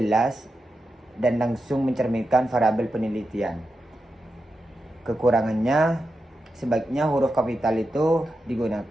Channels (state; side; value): normal; both; correlation 0.89